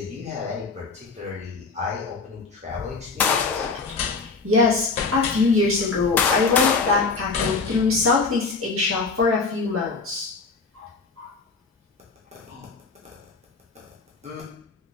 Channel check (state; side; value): quieter; right; 4.4 dB